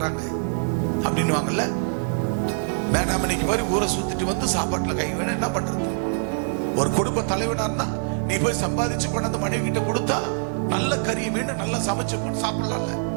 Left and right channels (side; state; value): left; silent; digital silence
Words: அப்படின்னு வாங்கல்ல. மேனா மினுக்கி மாதிரி ஊரை சுத்திட்டு வந்து சாப்பாட்டுல கை வேணும், என்ன பண்றது? ஒரு குடும்ப தலைவனா இருந்தா நீ போய் சம்பாதிச்சு கொண்டாந்து மனைவி கிட்ட கொடுத்தா நல்ல கறியை வேணும், நல்லா சமைச்சு போட்டு சாப்பிடலாம்ல